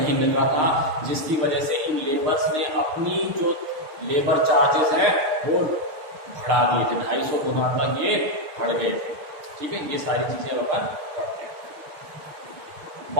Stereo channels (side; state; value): left; late; 6.5 ms